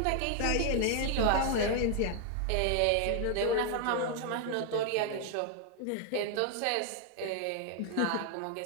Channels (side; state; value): both; different; correlation 0.00